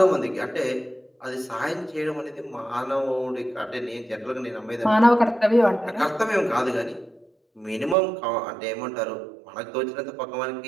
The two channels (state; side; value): drops out; left; at 8.0 s